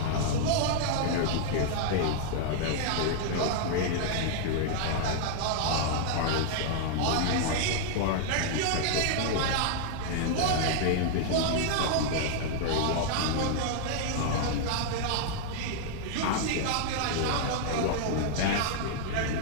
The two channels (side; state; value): both; different; correlation -0.01